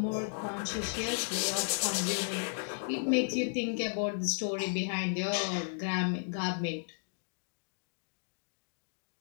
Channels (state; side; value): silent; right; digital silence